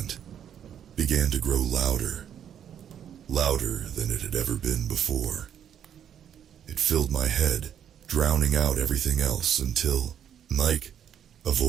began to grow louder, louder than it had ever been before. It filled my head, drowning out everything else until, "Mike," a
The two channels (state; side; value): quieter; left; 9.3 dB